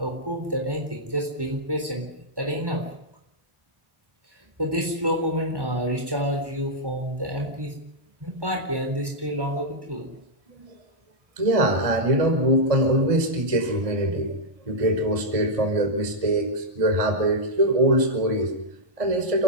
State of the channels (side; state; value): left; late; 1.1 ms